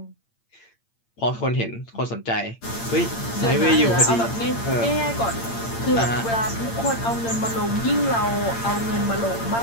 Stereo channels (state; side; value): late; right; 8.8 ms